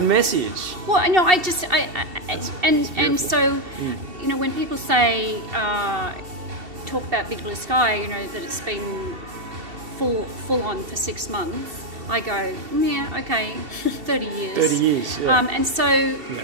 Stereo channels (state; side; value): late; left; 2.7 ms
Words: message. Well, no, and so, you know, when people say, talk about Big Blue Sky, you know, that it's been full on for 6 months, I go, yeah, okay, 30 years. 30 years, yeah. And so,